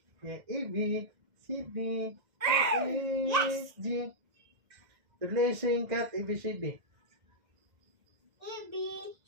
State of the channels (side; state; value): left; late; 2.1 ms